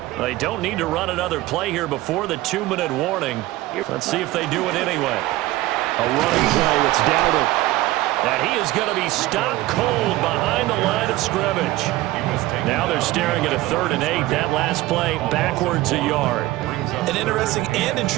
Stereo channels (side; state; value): left; quieter; 17.3 dB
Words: They don't need to run another play here before the 2-minute warning. Let's see if they do it anyway. A running play, it's Dowdle. And he is going to be stopped cold behind the line of scrimmage. Now they're staring at a 3rd and 8. That last play backwards a yard. An interesting and